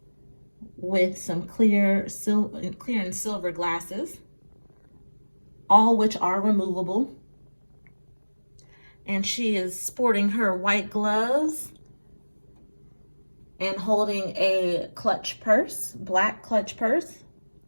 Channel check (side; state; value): both; inverted; correlation -1.00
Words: with some clear and silver glasses, all which are removable. And she is sporting her white gloves and holding a clutch purse, black clutch purse.